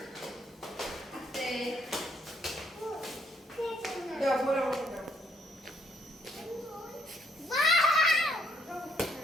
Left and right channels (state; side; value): normal; both; correlation 0.69